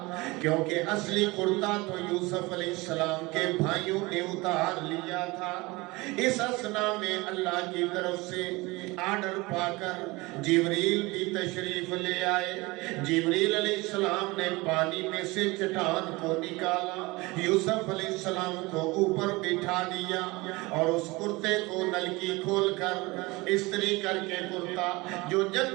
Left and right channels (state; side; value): quieter; left; 23.0 dB